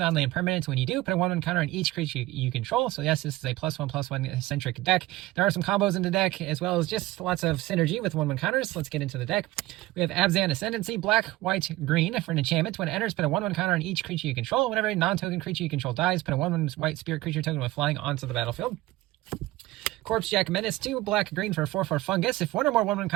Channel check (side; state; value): left; quieter; 18.0 dB